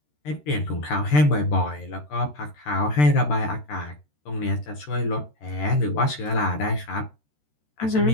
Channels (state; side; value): late; right; 13 ms